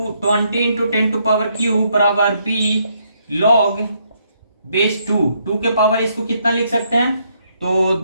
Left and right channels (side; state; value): both; inverted; correlation -0.73